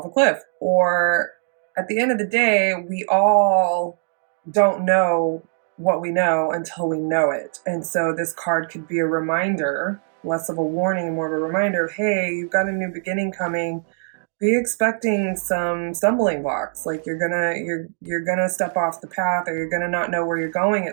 a cliff. Or at the end of the day, we all don't know what we know until we know it. And so this card could be a reminder, less of a warning, more of a reminder, hey, you've got a new beginning coming. Be expecting some stumbling blocks, like you're gonna step off the path, or you're gonna not know where you're going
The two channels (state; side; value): silent; left; digital silence